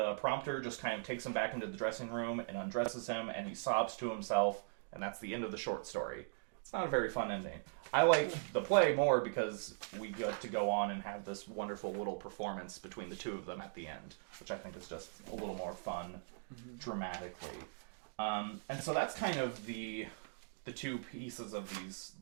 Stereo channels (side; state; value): left; silent; digital silence